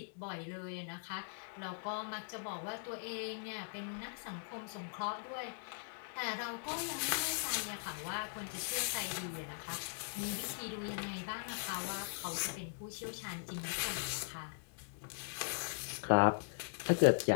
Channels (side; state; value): right; silent; digital silence